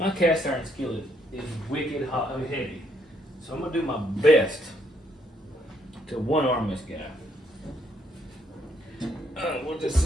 cast iron skillet is wicked hot, heavy, so I'm going to do my best to one-arm this guy. We'll just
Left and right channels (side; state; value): both; normal; correlation 0.72